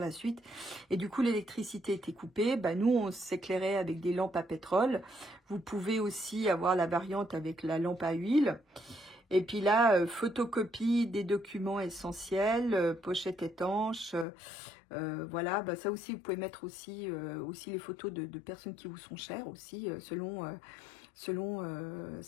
suite. Et du coup, l'électricité était coupée. Bah, nous, on s'éclairait avec des lampes à pétrole. Vous pouvez aussi avoir la variante avec la lampe à huile. Et puis là, photocopie des documents essentiels, pochette étanche, voilà. Bah ça aussi, vous pouvez mettre aussi les photos de personnes qui vous sont chères aussi, selon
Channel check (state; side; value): drops out; right; at 14.2 s